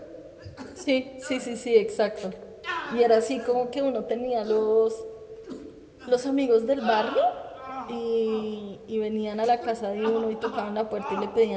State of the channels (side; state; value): both; identical; correlation 1.00